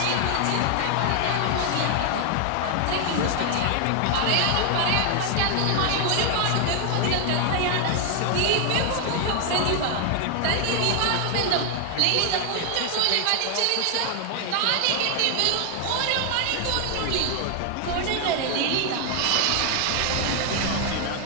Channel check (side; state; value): both; different; correlation 0.00